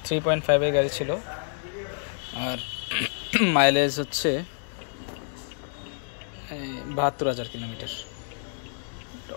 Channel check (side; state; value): right; silent; digital silence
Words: 3.5 গাড়ি ছিল, আর মাইলেজ হচ্ছে 72,000 কিলোমিটার